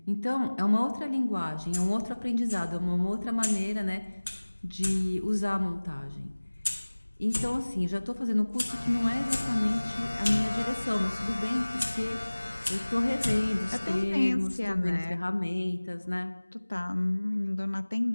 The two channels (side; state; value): both; inverted; correlation -1.00